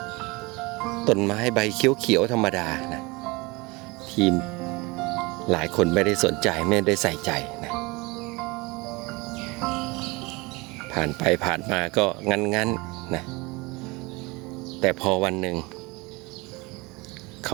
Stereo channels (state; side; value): quieter; left; 24.7 dB